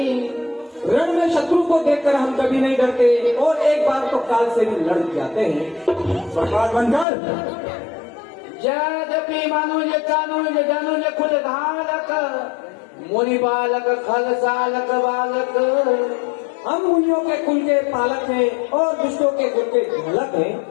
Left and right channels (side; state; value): right; drops out; at 7.1 s